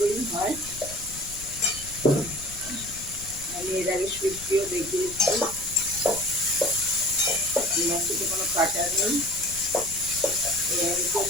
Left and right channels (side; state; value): left; noise; rumble, 15 dB below the sound